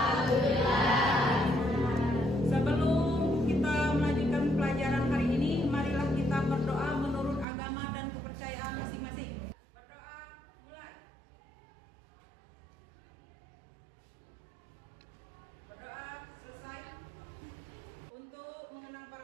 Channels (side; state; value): left; drops out; at 7.5 s